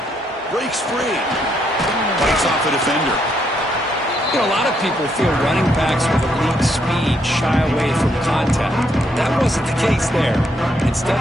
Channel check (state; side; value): normal; both; correlation 0.75